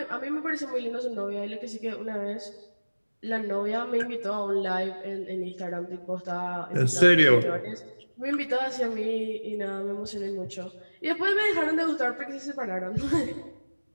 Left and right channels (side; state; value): both; inverted; correlation -1.00